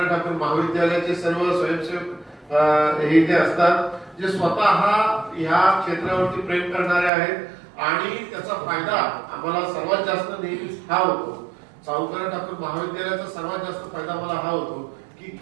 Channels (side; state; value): left; drops out; at 7.1 s